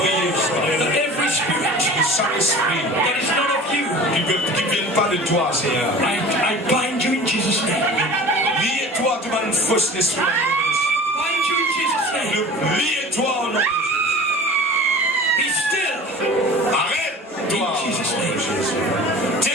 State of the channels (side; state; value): both; normal; correlation 0.40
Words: Seigneur, that every spirit que chaque esprit that is not of you, qui ne vienne pas de toi, Seigneur. I bind you in Jesus' name. Liez-toi, tu vas une fausse esprit. Bind you in Jesus' name. Liez-toi au nom de Be still Jésus. Arrête-toi. in Jesus' name.